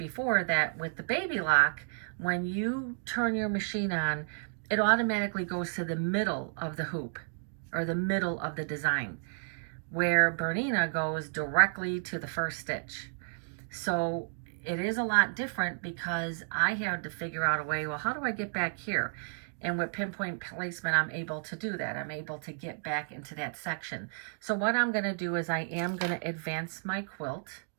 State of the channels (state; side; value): silent; left; digital silence